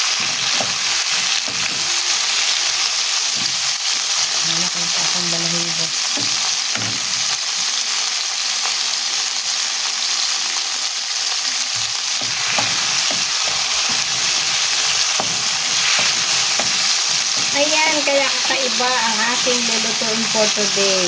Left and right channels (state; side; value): identical; both; correlation 1.00